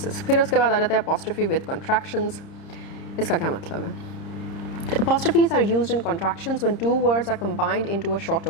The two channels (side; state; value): right; late; 30 ms